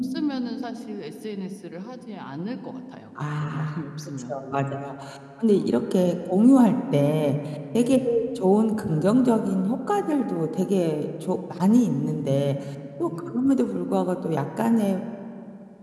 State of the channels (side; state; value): both; identical; correlation 1.00